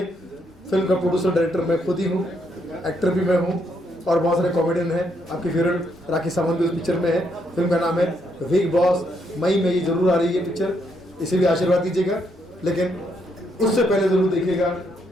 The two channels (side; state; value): both; normal; correlation 0.75